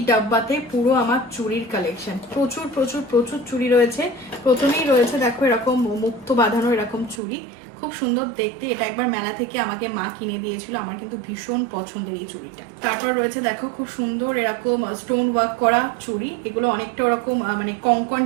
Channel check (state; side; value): drops out; left; at 7.2 s